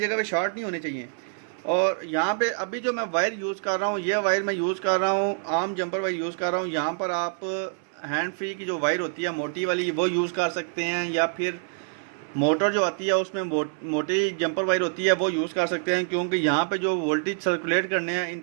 पे शॉर्ट नहीं होने चाहिए। और यहाँ पे अभी जो मैं वायर यूज़ कर रहा हूँ, ये वायर मैं यूज़ कर रहा हूँ, आम जंपर वायर यूज़ कर रहा हूँ। यहाँ पर आप हैंड फ्री की जो वायर होती है मोटी वाली, वो यूज़ कर सकते हैं, या फिर मोटर जो आती है उसमें मोटी जंपर वायर होती है वो यूज़ कर सकते हैं, क्योंकि यहाँ पे जो वोल्टेज सर्कुलेट करने हैं इन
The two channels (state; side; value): silent; left; 61 dB below the other